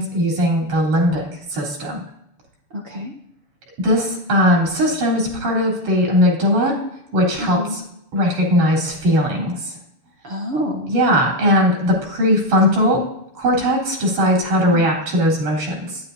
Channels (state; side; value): late; left; 6.9 ms